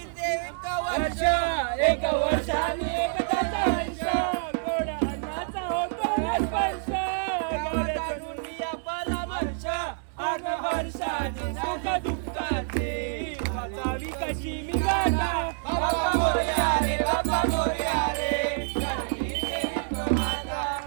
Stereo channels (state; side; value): silent; left; digital silence